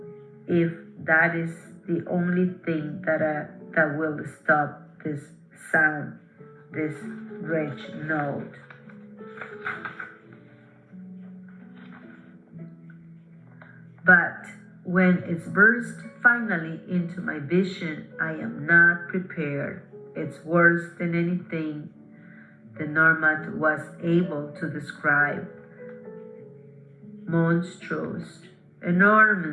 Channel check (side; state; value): both; identical; correlation 1.00